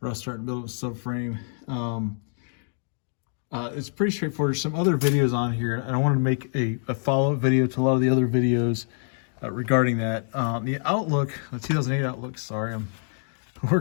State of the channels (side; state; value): right; silent; 61 dB below the other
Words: rust starting to build up the subframe. It's pretty straightforward. There's some other videos on here, and I wanted to make a follow-up video to a lot of the other videos regarding that. The Outlook, the 2008 Outlook, sorry, I'm